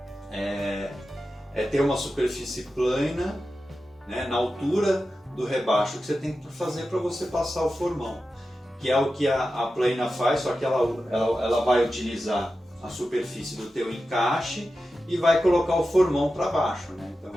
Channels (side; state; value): both; normal; correlation 0.92